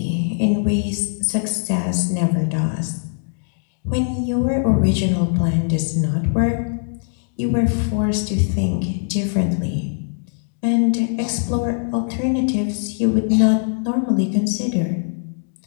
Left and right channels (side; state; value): right; silent; digital silence